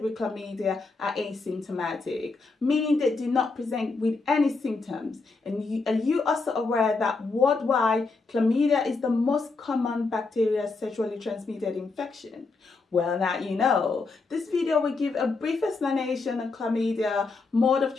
with chlamydia are asymptomatic, meaning they do not present with any symptoms? And are you also aware that worldwide, chlamydia is the most common bacterial sexually transmitted infection? Well, now you know. This video will give a brief explanation on chlamydia, mode of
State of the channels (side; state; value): right; quieter; 3.9 dB